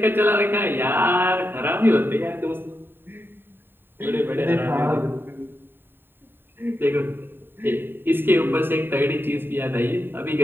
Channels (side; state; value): left; late; 0.099 ms